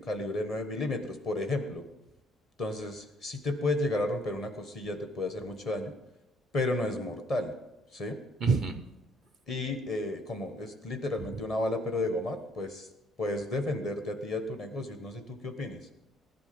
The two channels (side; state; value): both; normal; correlation 0.64